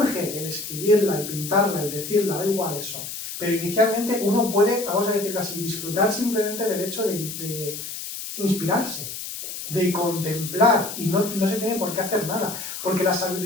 el escribirla, el pintarla, el decirla, da igual eso. Pero inicialmente uno puede, vamos a decirlo así, disfrutar simplemente del hecho de inspirarse, de contemplar, y no se tiene por qué hacer nada. Porque la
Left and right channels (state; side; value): noise; left; hiss, 8 dB below the sound